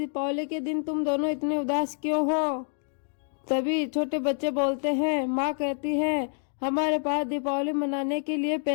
के दिन तुम दोनों इतने उदास क्यों हो? तभी छोटे बच्चे बोलते हैं, माँ कहती है हमारे पास दीपावली मनाने के लिए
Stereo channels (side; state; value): right; silent; 59 dB below the other